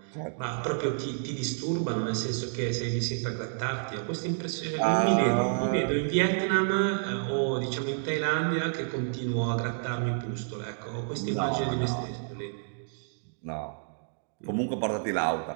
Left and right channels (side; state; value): left; silent; digital silence